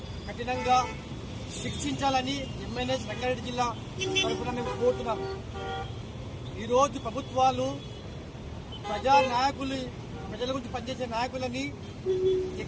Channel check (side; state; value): both; identical; correlation 1.00